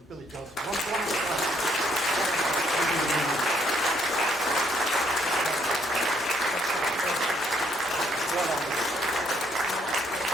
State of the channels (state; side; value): normal; both; correlation 0.69